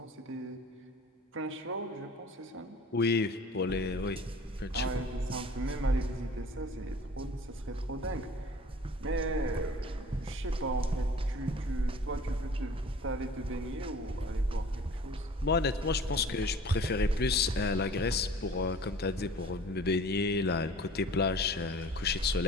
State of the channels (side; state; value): both; normal; correlation 0.46